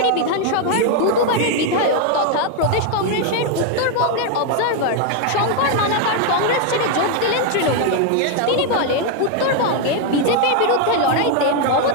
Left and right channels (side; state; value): both; different; correlation 0.01